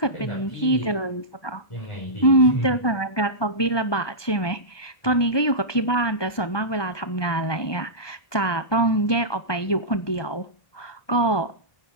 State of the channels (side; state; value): right; late; 1.2 ms